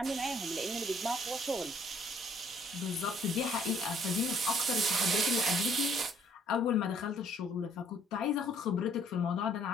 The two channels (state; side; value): normal; both; correlation 0.63